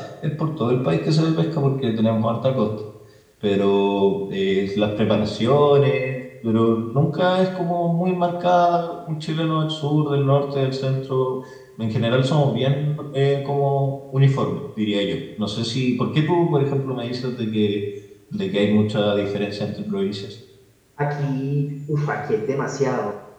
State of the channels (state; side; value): identical; both; correlation 1.00